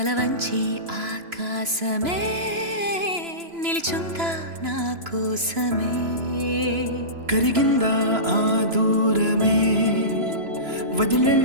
వంచి ఆకాశమే నిలిచుందా నా కోసమే. కరిగిందా ఆ దూరమే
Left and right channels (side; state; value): left; late; 3.0 ms